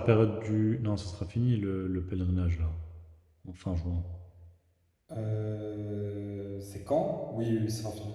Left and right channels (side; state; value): both; identical; correlation 1.00